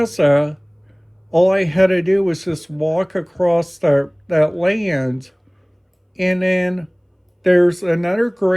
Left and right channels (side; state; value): both; identical; correlation 1.00